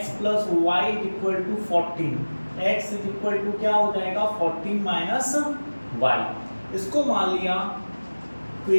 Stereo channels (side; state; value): both; inverted; correlation -1.00